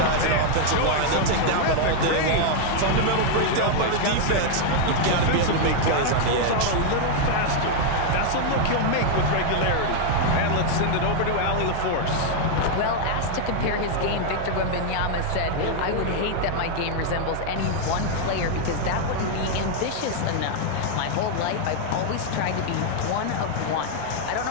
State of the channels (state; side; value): different; both; correlation 0.00